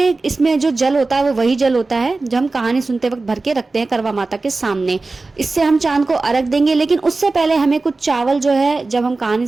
इसमें जो जल होता है वो वही जल होता है जो हम कहानी सुनते वक्त भर के रखते हैं करवा माता के सामने। इससे हम चांद को अर्घ देंगे। लेकिन उससे पहले हमें कुछ चावल जो है, जब हम कहानी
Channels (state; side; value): quieter; left; 3.5 dB